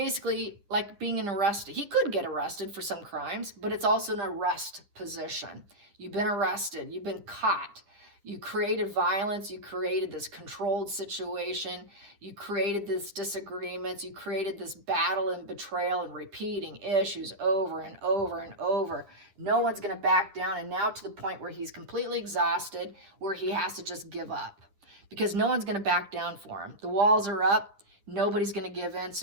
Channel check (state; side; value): late; left; 9.9 ms